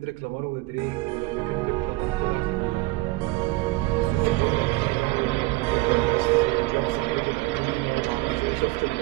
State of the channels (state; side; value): quieter; left; 20.7 dB